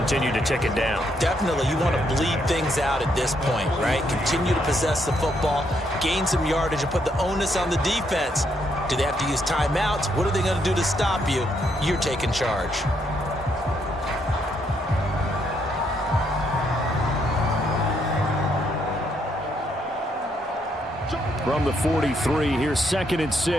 to tick it down. Definitely. You want to bleed things out at this point, right? Continue to possess the football, gain some yardage, and put the onus on the defense. Do they have to use timeouts? What are they going to do to stop you? You're taking charge. From the 43, here's 2nd and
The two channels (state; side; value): normal; both; correlation 0.75